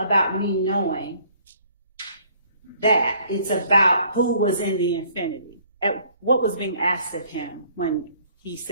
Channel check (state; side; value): inverted; both; correlation -0.60